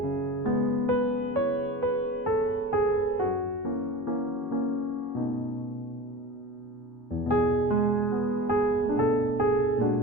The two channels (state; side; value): normal; both; correlation 0.35